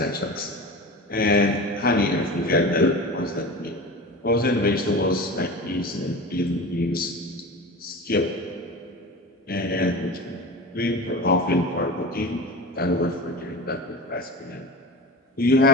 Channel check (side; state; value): both; normal; correlation 0.31